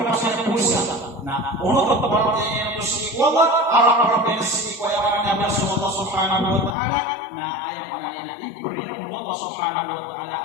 pasal puasa. Nah, untuk perbuatan yang bersikwala, arah yang sikwala yang Allah Subhanahu wa taala. Nah, ayat yang diberi Allah Subhanahu wa taala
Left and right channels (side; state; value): right; drops out; at 6.8 s